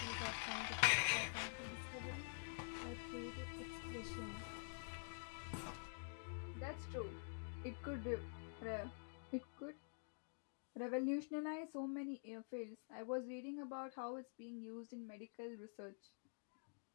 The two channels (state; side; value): silent; right; digital silence